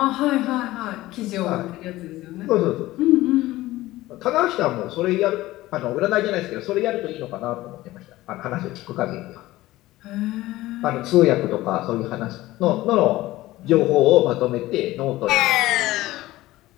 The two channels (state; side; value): quieter; right; 17.2 dB